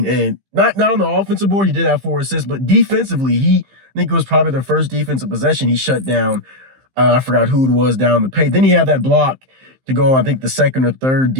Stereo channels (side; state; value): left; late; 15 ms